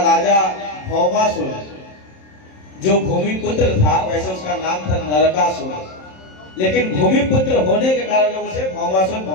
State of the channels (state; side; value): late; right; 27 ms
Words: राजा भौमासुर, जो भूमिपुत्र था, वैसे उसका नाम था नरकासुर, लेकिन भूमिपुत्र होने के कारण लोग उसे भौमासुर